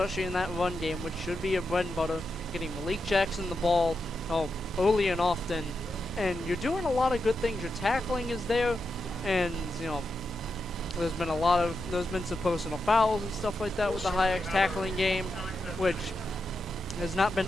in that run game, which should be a bread and butter, getting Malik Jackson the ball early and often. And you're doing a lot of good things. Your tackling is there, and, there's been some personal fouls and stuff like that with the Hyak tackling game, which has not been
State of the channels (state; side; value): normal; both; correlation 0.87